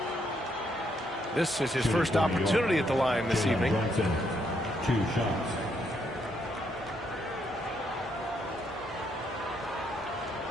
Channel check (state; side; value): normal; both; correlation 0.75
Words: This is his first opportunity at the line this evening. Brunson, 2 shots.